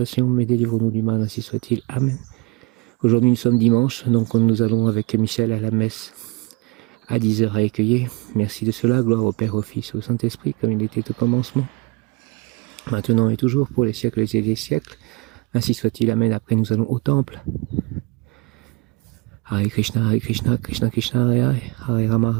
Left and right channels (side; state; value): left; quieter; 26.6 dB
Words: mais délivre-nous du mal, ainsi soit-il. Amen. Aujourd'hui, nous sommes dimanche, donc nous allons avec Michel à la messe à 10h à Écueillé. Merci de cela, gloire au Père, au Fils, au Saint-Esprit, comme il était au commencement, maintenant et toujours, pour les siècles et des siècles. Ainsi soit-il. Amen. Après, nous allons au temple. Hare Krishna, Krishna Krishna, Hare Hare, Hare Rama,